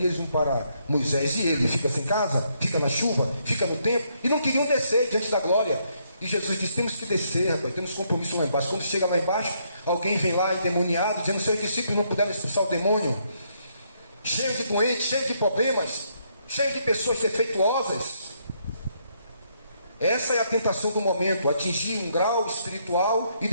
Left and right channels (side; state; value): both; inverted; correlation -0.73